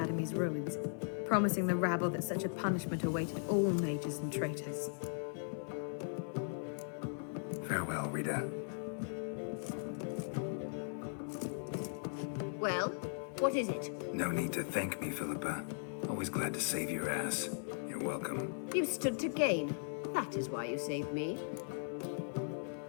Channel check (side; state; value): right; silent; 52 dB below the other